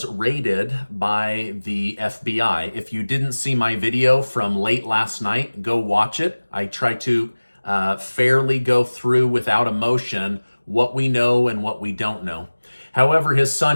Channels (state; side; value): inverted; both; correlation -1.00